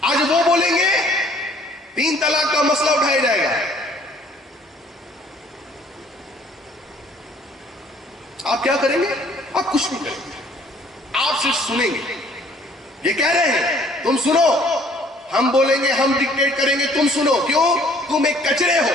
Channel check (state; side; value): normal; both; correlation 0.58